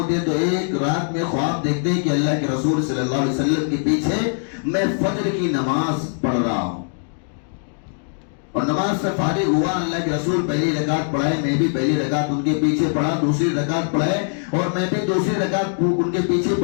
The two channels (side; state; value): right; silent; digital silence